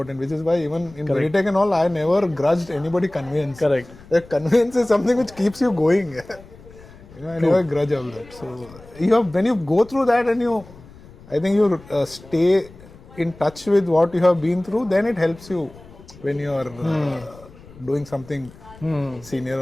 which is why even in Veritech and all, I never grudged anybody conveyance. Correct. The conveyance is something which keeps you going. I never grudge all that. So you have, when you go through that and I think you stay in touch with what you have been through, then it helps you when you are doing something senior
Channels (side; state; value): left; noise; rumble, 21 dB below the sound